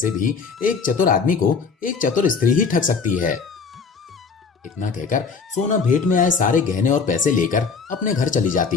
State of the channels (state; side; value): quieter; right; 5.2 dB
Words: भी एक चतुर आदमी को एक चतुर स्त्री ही ठग सकती है। इतना कहकर सोना भेंट में आए सारे गहने और पैसे लेकर अपने घर चली